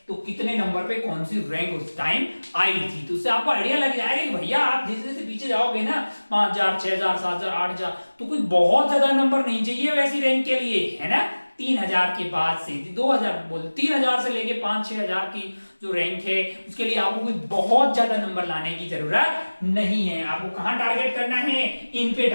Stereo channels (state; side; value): inverted; both; correlation -1.00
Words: तो कितने नंबर पे कौन सी रैंक उस टाइम आई थी। तो उससे आपको आइडिया लग जाएगा कि भैया आप जैसे जैसे पीछे जाओगे ना 5000 6000 7000 8000 तो कोई बहुत ज्यादा नंबर नहीं चाहिए वैसी रैंक के लिए, है ना। 3000 के बाद से 2000 बोल 3000 से लेके 5-6000 की जो रैंक है उसके लिए आपको कोई बहुत ज्यादा नंबर लाने की जरूरत नहीं है। आपको कहां टारगेट करना है, इन पे